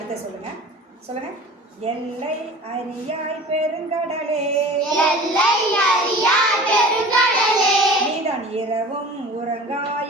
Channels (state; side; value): normal; both; correlation 0.40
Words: சொல்லுங்க. சொல்லுங்க. எல்லை அறியாய் பெருங்கடலே, எல்லை அறியாய் பெருங்கடலே, நீதான் இரவும்